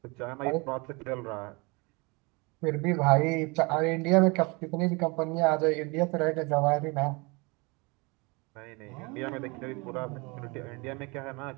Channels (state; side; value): quieter; left; 28.1 dB